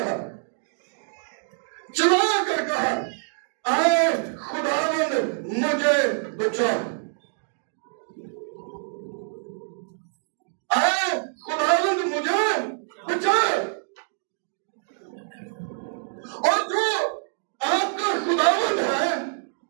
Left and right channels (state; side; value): silent; left; digital silence